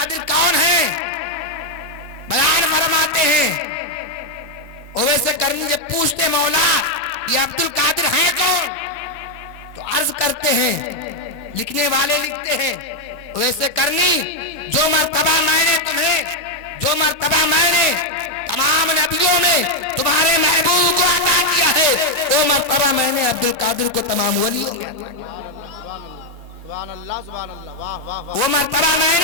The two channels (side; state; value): left; late; 1.9 ms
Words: कौन है? बयान फरमाते हैं, ओवैस करनी जब पूछते, मौला ये अब्दुल कादिर है कौन? तो अर्ज करते हैं, लिखने वाले लिखते हैं, ओवैस करनी, जो मर्तबा मैंने तुम्हें, जो मर्तबा मैंने तमाम नबियों में तुम्हारे महबूब को अता किया है, वो मर्तबा मैंने अब्दुल कादिर को तमाम वलियों में, सुभान अल्लाह सुभान अल्लाह, वाह वाह वाह, वो मर्तबा